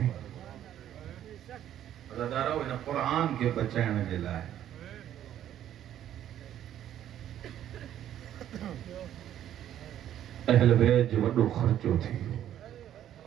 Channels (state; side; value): quieter; left; 11.2 dB